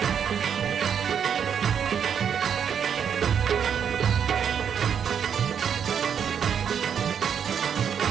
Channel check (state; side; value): quieter; left; 7.8 dB